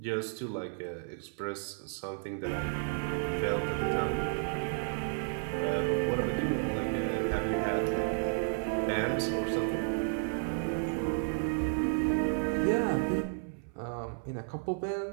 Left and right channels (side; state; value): left; silent; 56 dB below the other